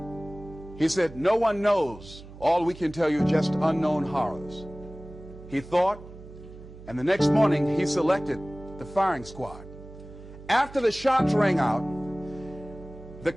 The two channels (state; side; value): noise; right; hum, 17 dB below the sound